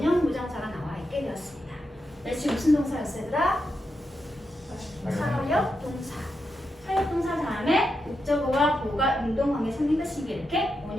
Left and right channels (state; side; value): normal; both; correlation 0.86